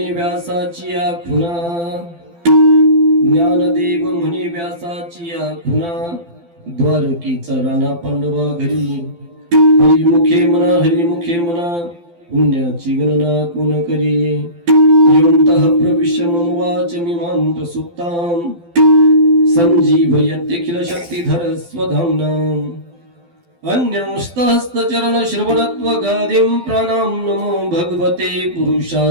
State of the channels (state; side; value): late; left; 12 ms